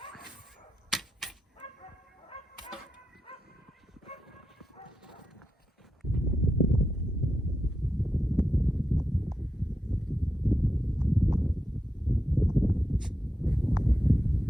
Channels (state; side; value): normal; both; correlation 0.87